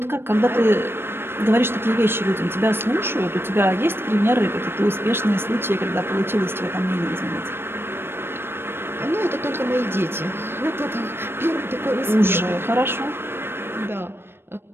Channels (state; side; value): late; left; 0.11 ms